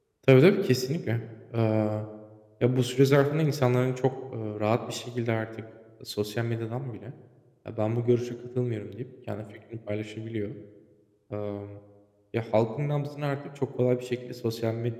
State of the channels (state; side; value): identical; both; correlation 1.00